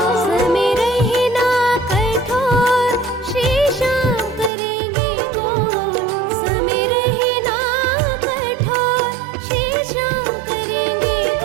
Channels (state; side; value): drops out; left; at 4.5 s